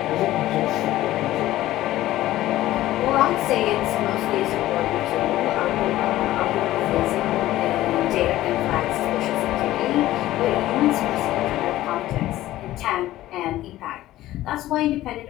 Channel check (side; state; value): right; quieter; 15.2 dB